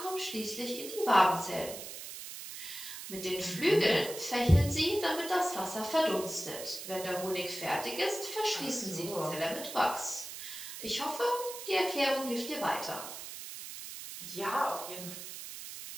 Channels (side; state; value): right; noise; hiss, 10 dB below the sound